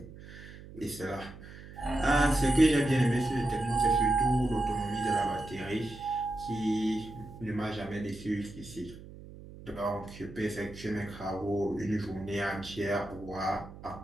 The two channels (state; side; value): noise; right; hum, 16 dB below the sound